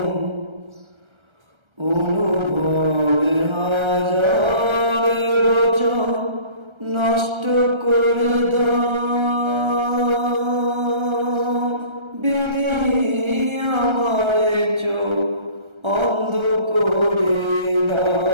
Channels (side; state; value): left; late; 1.3 ms